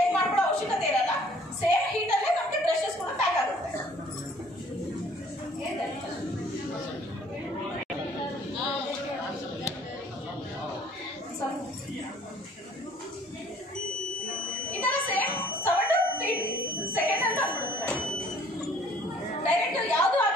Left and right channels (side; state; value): both; normal; correlation 0.56